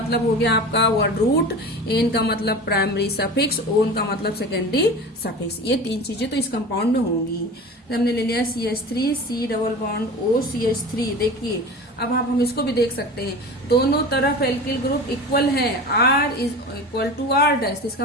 हो गया आपका वर्ड रूट, एन का मतलब प्राइमरी सफिक्स, ओन का मतलब सेकेंडरी सफिक्स। ये 3 चीजें तो इस कंपाउंड में होंगी। हमने ले लिया CH3, C double bond O CH3। देखिए अब हम इसको भी देख सकते हैं, दोनों तरफ एल्किल ग्रुप इक्वल है, R is equal to R dash. इसका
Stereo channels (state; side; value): normal; both; correlation 0.34